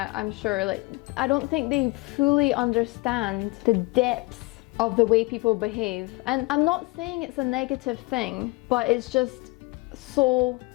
sure, like, I don't think they fully understand the depths of the way people behave. And I'm not saying it's a negative thing, but it's just so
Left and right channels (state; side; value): quieter; right; 24.4 dB